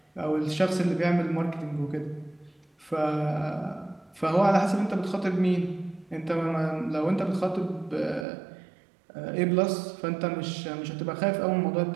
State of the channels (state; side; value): drops out; left; at 8.2 s